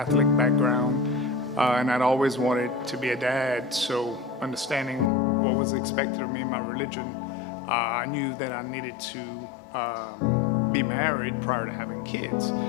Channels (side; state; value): right; drops out; at 5.1 s